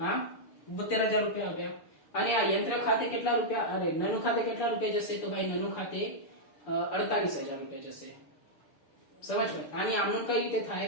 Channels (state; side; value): late; right; 6.8 ms